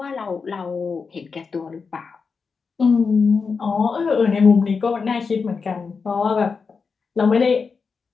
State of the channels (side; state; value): right; quieter; 5.1 dB